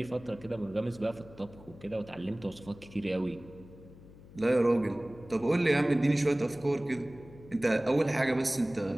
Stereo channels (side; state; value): left; noise; hum, 20 dB below the sound